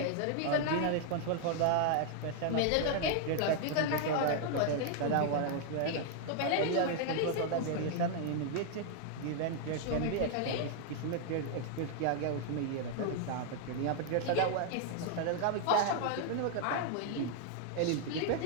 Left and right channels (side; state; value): both; different; correlation 0.00